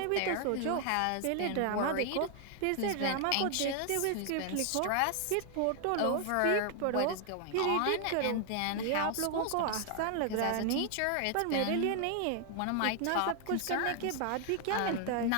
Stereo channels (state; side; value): different; both; correlation 0.00